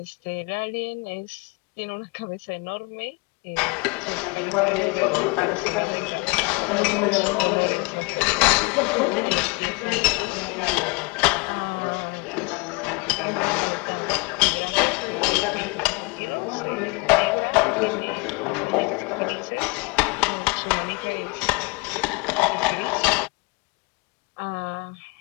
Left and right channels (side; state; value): right; quieter; 29.3 dB